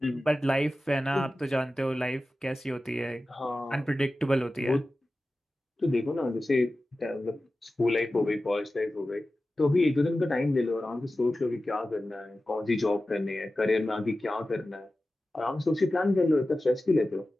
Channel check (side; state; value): both; normal; correlation 0.95